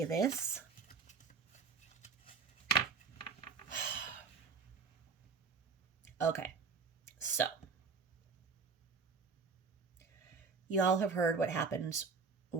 this, okay, so y'all have heard what happens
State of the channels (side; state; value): left; quieter; 5.1 dB